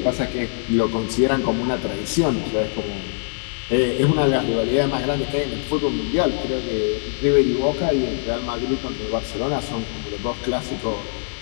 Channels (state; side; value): silent; right; 59 dB below the other